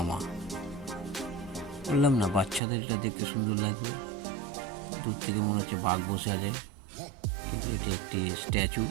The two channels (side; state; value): left; drops out; at 2.6 s